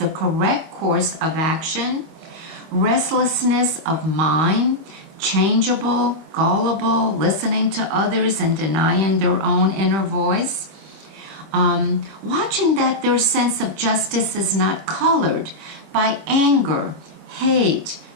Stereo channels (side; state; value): left; late; 25 ms